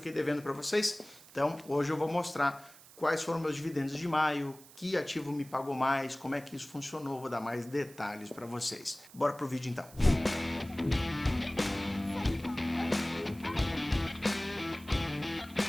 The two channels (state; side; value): noise; right; hiss, 21 dB below the sound